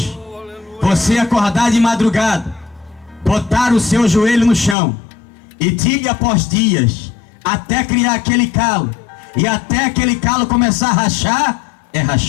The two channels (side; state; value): right; drops out; at 4.8 s